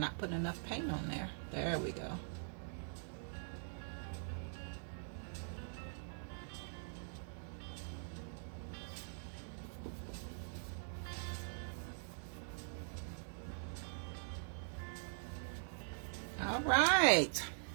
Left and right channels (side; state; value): left; silent; digital silence